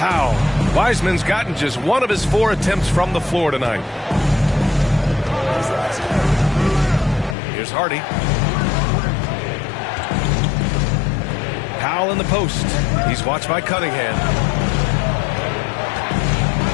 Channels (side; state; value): right; drops out; at 7.4 s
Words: Wiseman's gotten just 1 of his 4 attempts from the floor tonight. Here's Hardy. Powell in the post. He's watched by Cunningham.